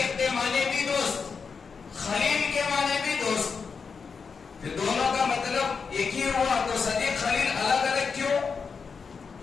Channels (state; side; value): quieter; right; 5.5 dB